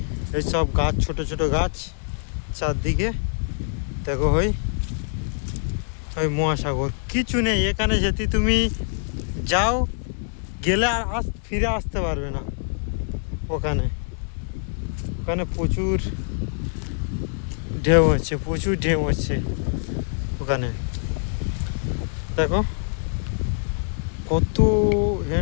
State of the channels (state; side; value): silent; right; digital silence